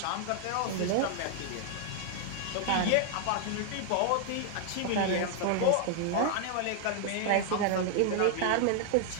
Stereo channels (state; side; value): different; both; correlation 0.00